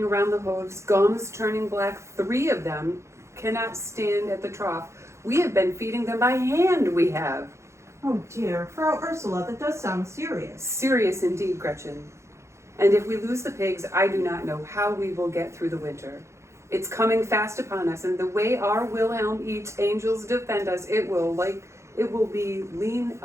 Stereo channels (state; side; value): late; left; 0.14 ms